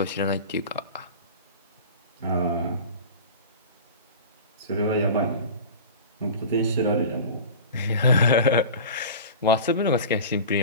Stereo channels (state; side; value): inverted; both; correlation -0.35